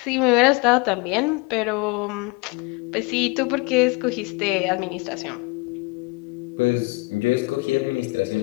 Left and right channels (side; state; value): right; quieter; 26.3 dB